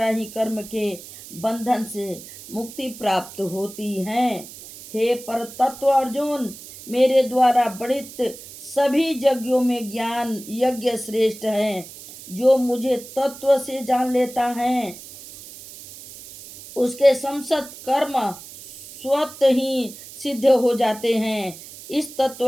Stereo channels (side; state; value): right; noise; hiss, 16 dB below the sound